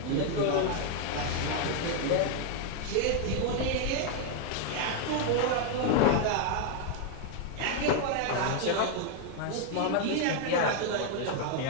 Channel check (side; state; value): both; different; correlation 0.00